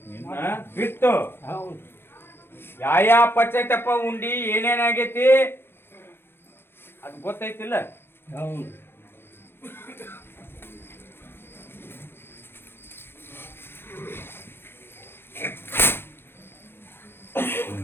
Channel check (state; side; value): late; right; 0.11 ms